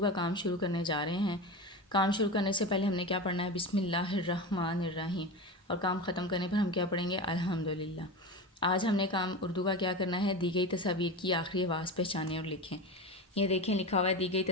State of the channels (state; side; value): normal; both; correlation 0.25